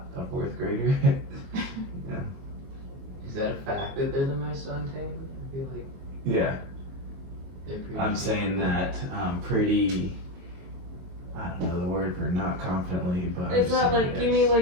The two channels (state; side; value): late; left; 22 ms